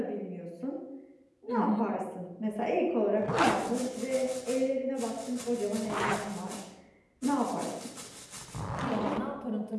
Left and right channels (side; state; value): both; identical; correlation 1.00